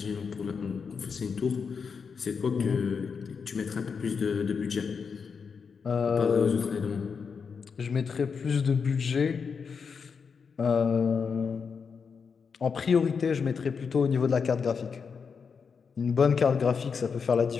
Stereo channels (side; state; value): right; quieter; 5.8 dB